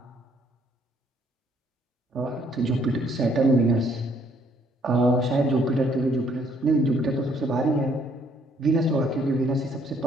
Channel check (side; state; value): both; normal; correlation 0.66